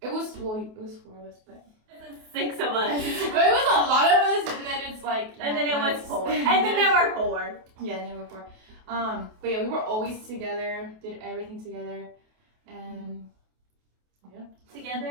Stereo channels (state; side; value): late; left; 28 ms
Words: it was 4 of us, but It's 6 of us. but it was a lot of us, and then it's And then it was 4. And then there were 4. Yeah, and then we were 4. But yeah, we were always together, did everything together, and yeah.